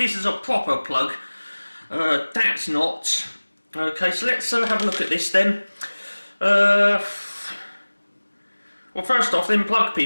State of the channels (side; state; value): both; inverted; correlation -1.00